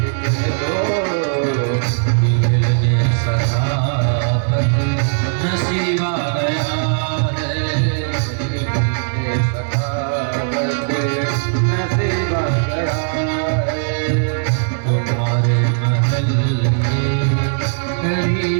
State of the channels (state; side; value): silent; left; digital silence